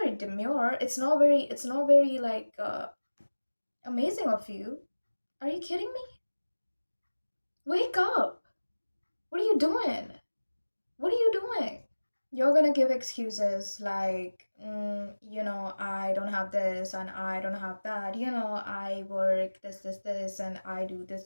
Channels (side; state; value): both; inverted; correlation -1.00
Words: very demure. It's not very like Amazing of you. Are you kidding me? Wake up. What are you doing? What are you doing? You're gonna give excuses like, I don't have this and I don't have that. I work this, and I do